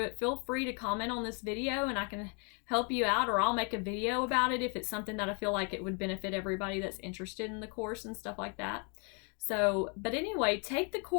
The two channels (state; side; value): quieter; right; 36.4 dB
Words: it, feel free to comment on this video and I can help you out, or I'll make a video about it if it's something that I feel like it would benefit everybody that's interested in the course and stuff like that. So, but anyway, take the